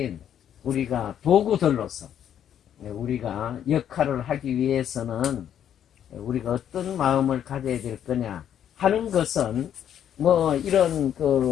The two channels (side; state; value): right; quieter; 9.8 dB